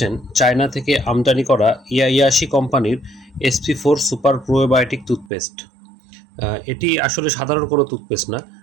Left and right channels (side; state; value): left; drops out; at 5.3 s